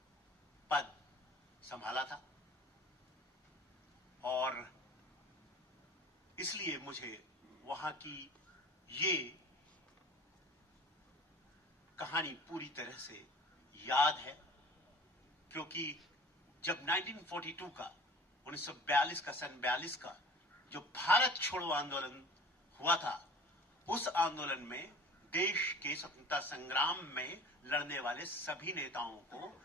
पद संभाला था, और इसलिए मुझे वहां की ये कहानी पूरी तरह से याद है, क्योंकि जब 1942 का 1942 का सन 42 का जो भारत छोड़ो आंदोलन हुआ था, उस आंदोलन में देश के स्वतंत्रता संग्राम में लड़ने वाले सभी नेताओं को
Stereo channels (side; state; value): both; normal; correlation 0.43